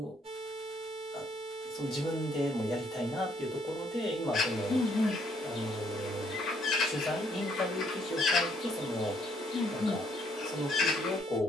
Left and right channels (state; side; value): normal; both; correlation 0.68